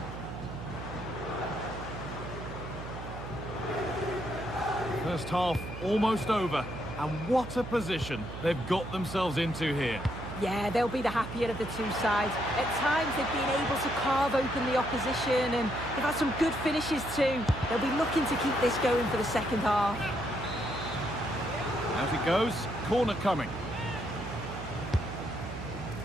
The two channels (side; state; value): right; noise; hum, 10 dB below the sound